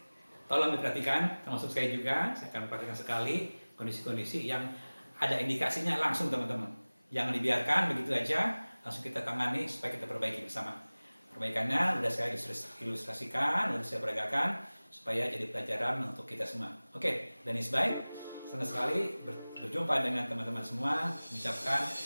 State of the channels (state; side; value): inverted; both; correlation -1.00